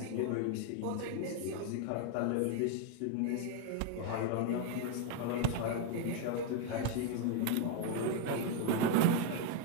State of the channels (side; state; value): both; different; correlation 0.01